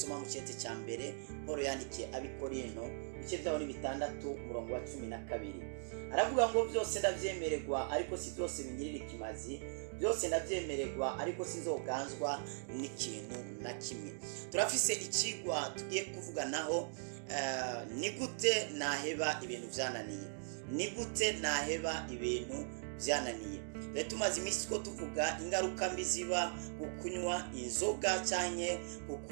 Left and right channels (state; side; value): silent; left; digital silence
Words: mu cyete cya mbere Paulo yandikiye abikorino ibice byaho ni 6 umurongo wa 12. Aravuga ngo byose ndavyemererwa ariko si byose bingirira ikimazi, byose ndavyemererwa ariko sinzoganzwa n'ikintu na kimwe. Turafise ikigwa tugiye kuvuganaho ni gute naheba ibintu byananiye, ni gute naheba ibintu byananiye. Tumaze iminsi ko tuvuga ingaruka mbi ziba gukunywa inzoga cyane